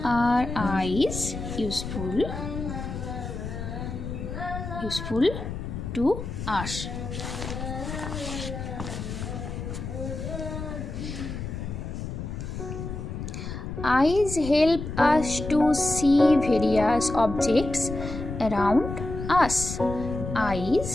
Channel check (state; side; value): noise; left; rumble, 7 dB below the sound